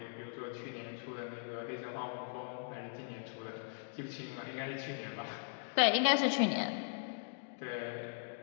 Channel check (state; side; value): silent; right; digital silence